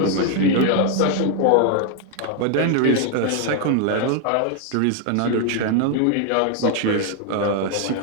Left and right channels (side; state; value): both; different; correlation 0.01